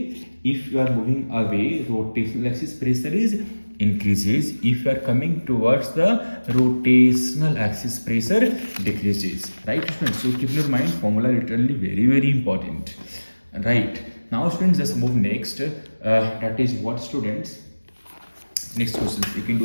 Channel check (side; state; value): both; inverted; correlation -1.00